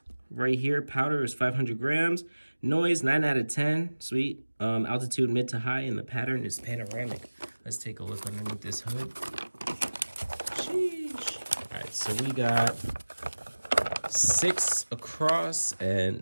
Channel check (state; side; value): inverted; both; correlation -1.00